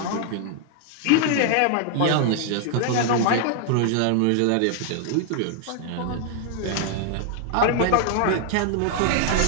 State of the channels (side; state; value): both; different; correlation 0.00